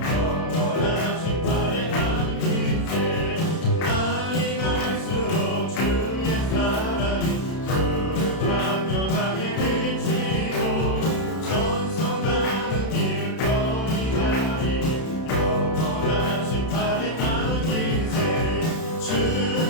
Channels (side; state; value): right; late; 31 ms